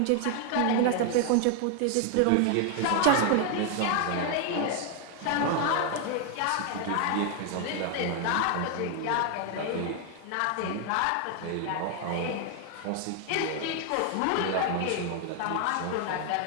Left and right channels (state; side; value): different; both; correlation 0.00